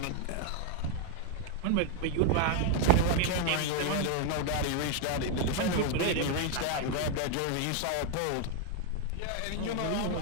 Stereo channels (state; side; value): different; both; correlation 0.01